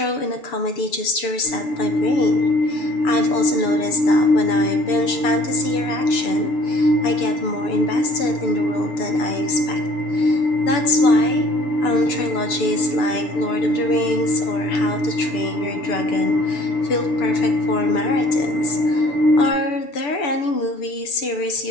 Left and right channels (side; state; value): right; late; 7.0 ms